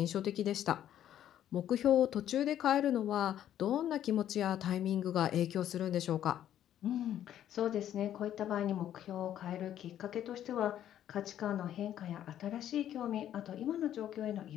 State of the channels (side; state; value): right; quieter; 11.1 dB